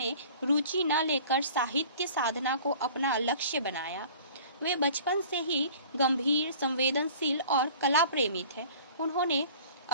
रुचि न लेकर साहित्य साधना को अपना लक्ष्य बनाया। वे बचपन से ही गंभीर, संवेदनशील और कला प्रेमी थे। उन्होंने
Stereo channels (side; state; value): both; inverted; correlation -0.46